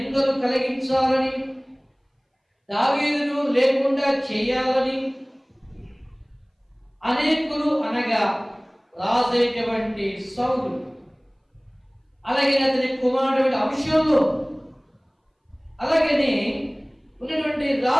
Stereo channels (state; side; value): identical; both; correlation 1.00